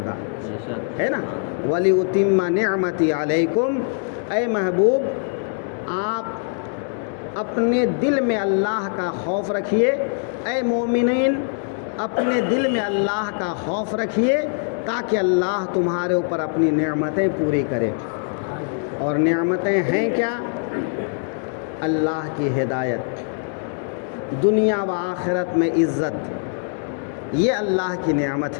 ہے نا؟ وَلِأُتِمَّ نِعْمَتِي عَلَيْكُمْ، اے محبوب آپ اپنے دل میں اللہ کا خوف رکھیے، اے مومنین اپنے دل میں اللہ کا خوف رکھیے تاکہ اللہ تمہارے اوپر اپنی نعمتیں پوری کرے۔ اور نعمتیں ہیں کیا؟ اللہ کی ہدایت، دنیا و آخرت میں عزت، یہ اللہ کی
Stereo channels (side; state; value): right; silent; 57 dB below the other